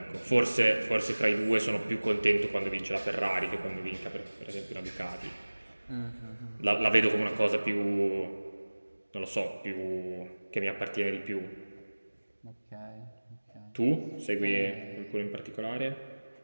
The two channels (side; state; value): both; inverted; correlation -1.00